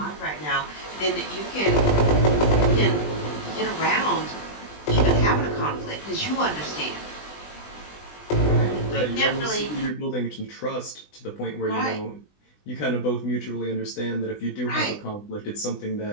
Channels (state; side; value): late; right; 20 ms